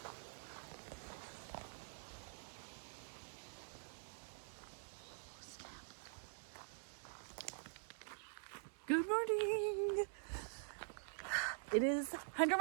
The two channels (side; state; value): left; silent; digital silence